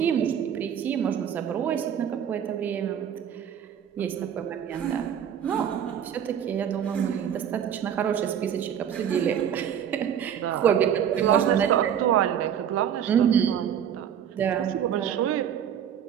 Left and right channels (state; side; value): quieter; left; 9.0 dB